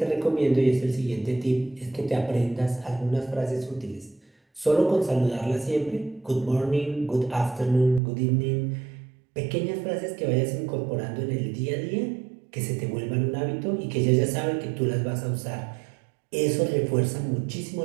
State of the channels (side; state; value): left; drops out; at 8.0 s